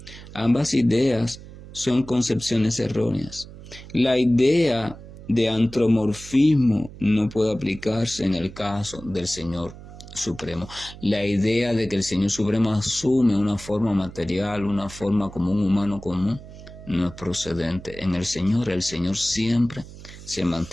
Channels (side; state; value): right; noise; hum, 16 dB below the sound